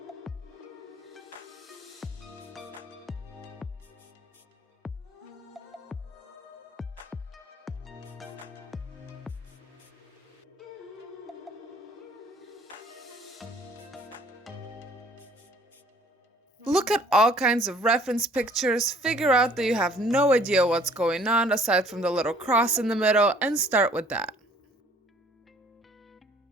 Look at all kinds of reference pictures, figure out that you have no idea what's going on aside from the little cross in the middle, and start with that.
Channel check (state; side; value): normal; both; correlation 0.56